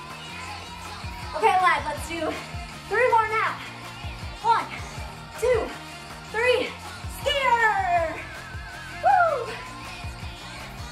Okay, lads, let's do 3 more now. 1, 2, 3. Skier! Woo!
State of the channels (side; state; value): both; identical; correlation 1.00